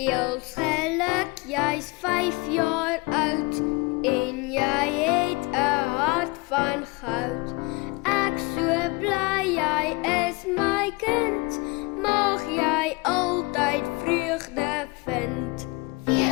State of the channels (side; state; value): right; quieter; 25.5 dB